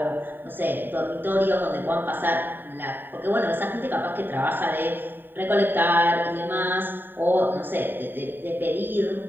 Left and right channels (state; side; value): late; left; 0.094 ms